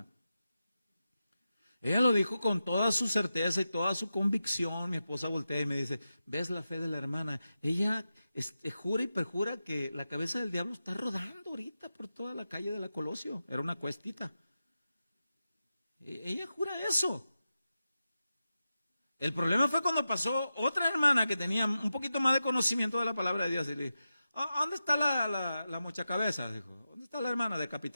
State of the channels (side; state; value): both; inverted; correlation -0.91